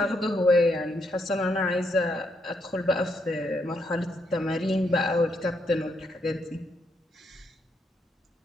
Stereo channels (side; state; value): both; normal; correlation 0.77